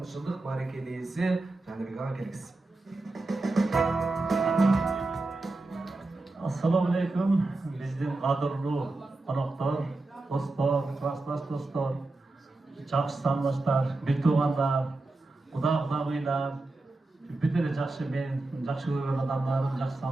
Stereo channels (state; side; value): quieter; left; 3.1 dB